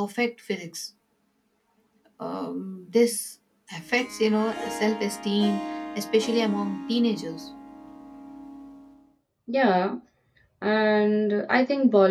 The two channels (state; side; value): identical; both; correlation 1.00